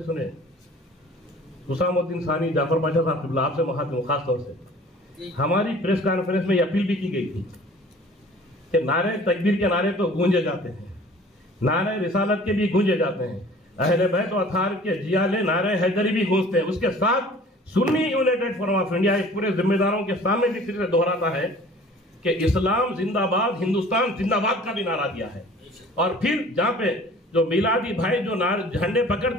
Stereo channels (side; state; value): both; normal; correlation 0.48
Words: सुने। हुसामुद्दीन सानी जाफर पाशा साहब क़िबला आपसे महात्मा खास तौर से हमारी प्रेस कॉन्फ्रेंस में अपील भी की गई थी कि नारे तकबीर के नारे तो गूंजे जाते हैं, नारे रिसालत के भी गूंजे जाते हैं, अहले बैत और अथार के जियाले नारे हैदरी भी गूंजते हैं। उसके साथ Sunni United forum of India पूरे जिम्मेदारों के सामने भी फिर से दोहराता है कि इस्लाम जिंदाबाद, हिंदुस्तान जिंदाबाद का भी नारा दिया है। और फिर जहाँ पे जो मिलादी भाई जो झंडे